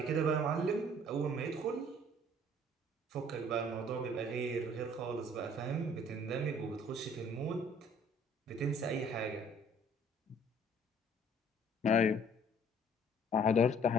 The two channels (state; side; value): normal; both; correlation 0.56